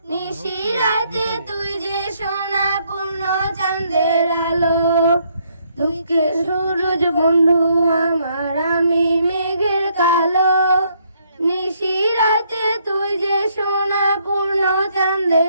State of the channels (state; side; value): inverted; both; correlation -0.71